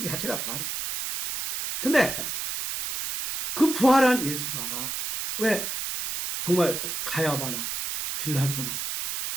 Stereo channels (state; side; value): noise; right; hiss, 4 dB below the sound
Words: 자체가 부활이에요. 근데 그 부활한 예수가 왜 정말 가야바나 빌라도나